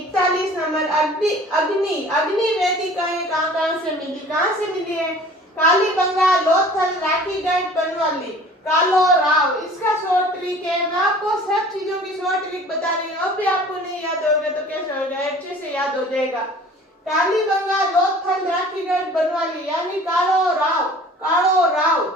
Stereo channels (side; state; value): both; normal; correlation 0.47